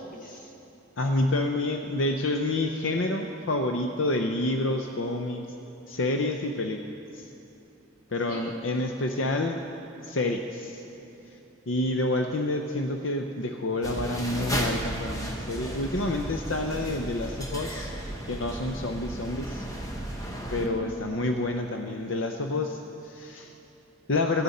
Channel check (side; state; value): both; normal; correlation 0.27